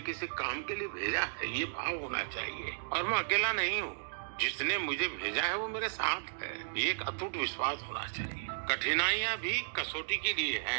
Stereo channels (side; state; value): left; silent; digital silence